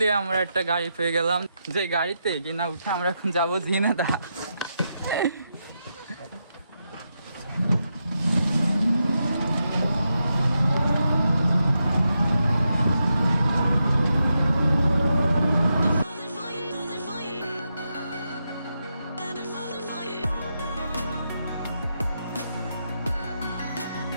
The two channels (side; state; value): both; inverted; correlation -0.85